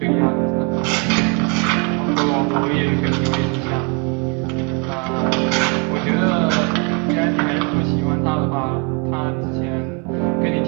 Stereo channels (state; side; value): quieter; left; 33.8 dB